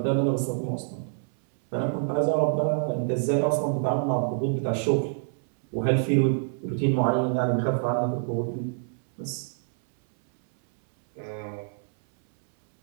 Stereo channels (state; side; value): silent; left; 61 dB below the other